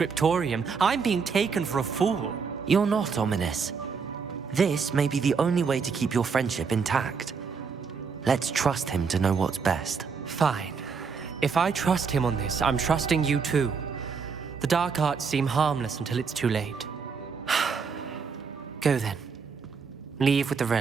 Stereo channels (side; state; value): left; quieter; 5.6 dB